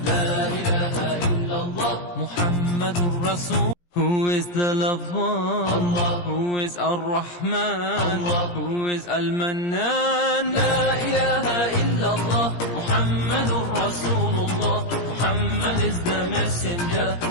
La ilaha illallah, Muhammadur Rasul. Who is the lover? Allah. Who is Ar-Rahman? Allah. Who is Al-Mannan? La ilaha illallah, Muhammadur Rasulullah. Muhammad is the messenger,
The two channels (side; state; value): right; late; 17 ms